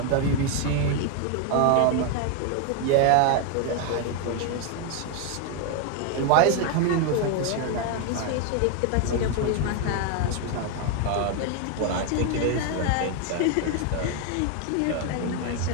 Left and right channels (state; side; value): different; both; correlation 0.01